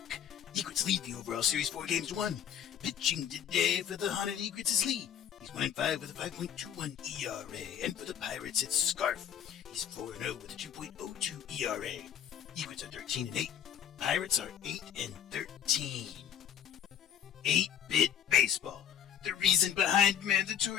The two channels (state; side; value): quieter; right; 9.2 dB